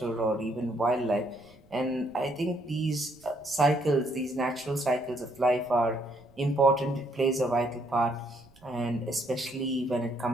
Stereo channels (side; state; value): right; noise; rumble, 29 dB below the sound